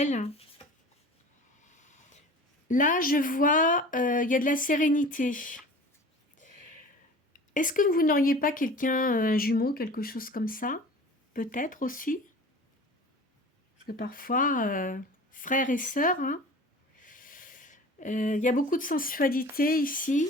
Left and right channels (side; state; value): both; normal; correlation 0.40